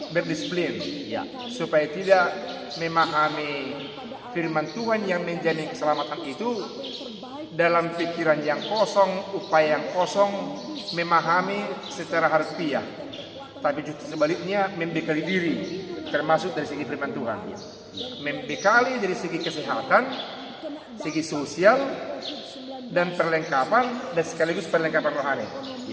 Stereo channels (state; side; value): identical; both; correlation 1.00